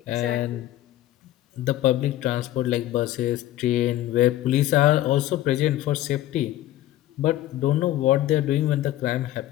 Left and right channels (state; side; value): quieter; right; 14.3 dB